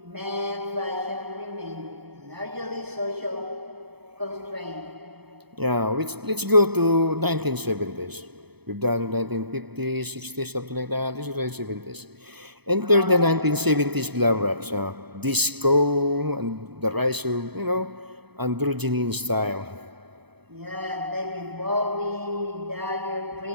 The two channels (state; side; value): late; left; 0.98 ms